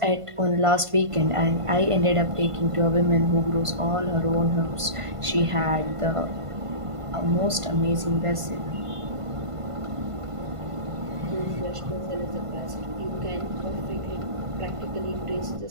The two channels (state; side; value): late; left; 1.5 ms